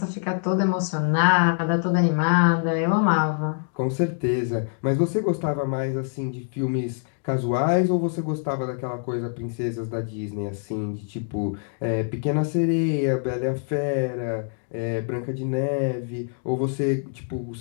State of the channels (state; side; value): silent; right; 62 dB below the other